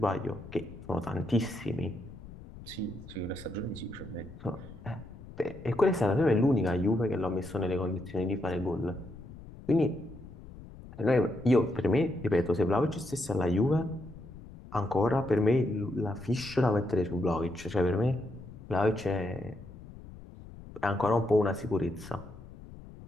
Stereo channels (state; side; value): noise; left; rumble, 16 dB below the sound